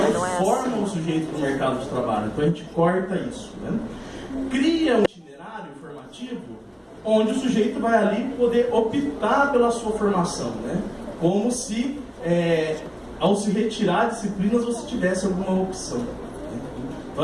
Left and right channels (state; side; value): identical; both; correlation 1.00